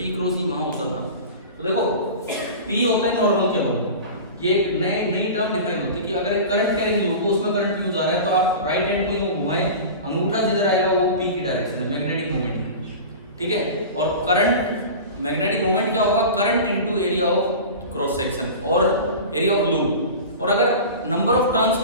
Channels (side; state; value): both; inverted; correlation -0.33